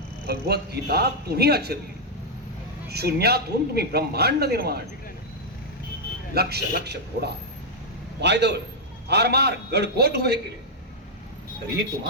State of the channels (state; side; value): normal; both; correlation -0.03